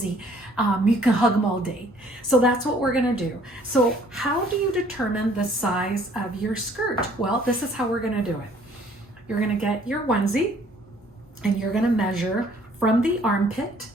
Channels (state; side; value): normal; both; correlation 0.59